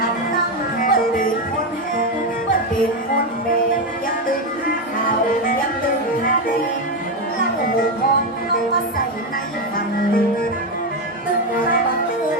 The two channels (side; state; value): both; normal; correlation 0.09